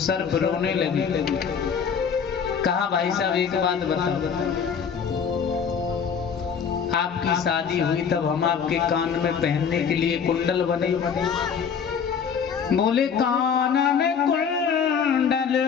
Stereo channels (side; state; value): right; quieter; 6.9 dB